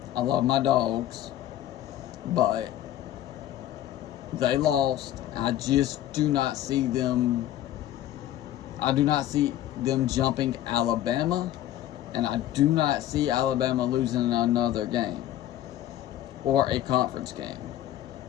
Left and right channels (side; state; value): right; quieter; 12.8 dB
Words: I love my dogs, but they lost. I just do not see them. I do not see them jumping Alabama, and I do not see Alabama losing another game or a conference game.